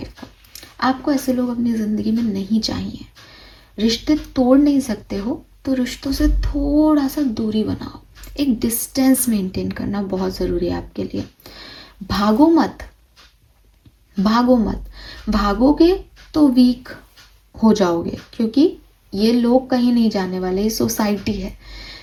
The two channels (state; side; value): identical; both; correlation 1.00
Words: को। आपको ऐसे लोग अपनी ज़िंदगी में नहीं चाहिए। रिश्ते तोड़ नहीं सकते हो तो रिश्तों से थोड़ा सा दूरी बनाओ, एक डिस्टेंस मेंटेन करना बहुत ज़रूरी है आपके लिए। भागो मत, भागो मत, भागोगे तो वीक हो जाओगे, क्योंकि ये लोग कहीं नहीं जाने वाले, ये सोसाइटी है।